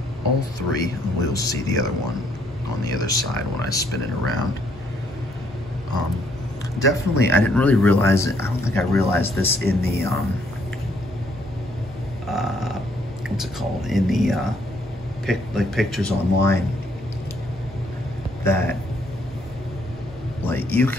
all 3, and we'll see the other one on the other side when I spin it around. Definitely, I didn't really realize it. I don't think I realized this in the what's it called, in the pictures online, that like you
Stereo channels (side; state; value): both; normal; correlation 0.69